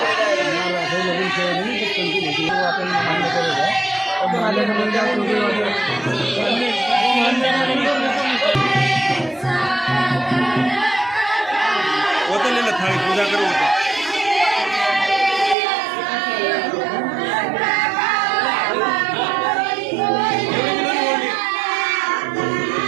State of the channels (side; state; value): left; drops out; at 15.6 s